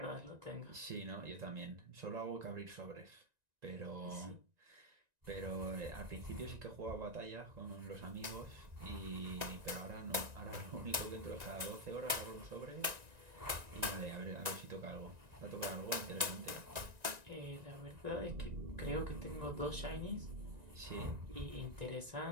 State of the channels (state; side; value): late; left; 1.9 ms